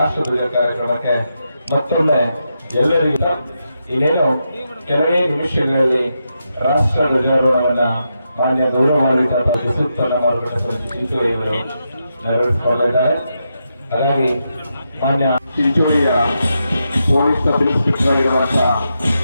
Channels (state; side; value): inverted; both; correlation -0.85